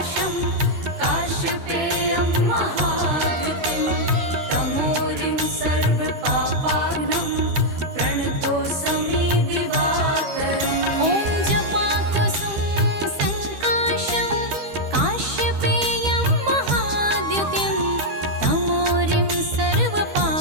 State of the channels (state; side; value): late; left; 13 ms